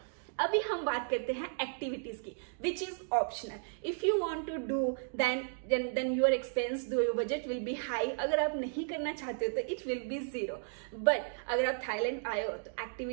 अभी हम बात करते हैं एक्टिविटीज की, which is optional. If you want to do then your expense, your budget will be high. अगर आप नहीं करना चाहते हो तो इट विल बी 0। बट अगर आप थाईलैंड आए हो तो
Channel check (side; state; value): left; silent; digital silence